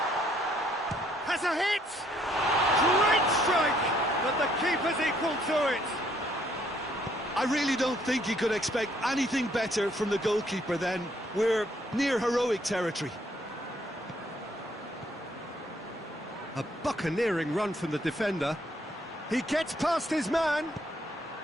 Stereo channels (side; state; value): both; normal; correlation 0.67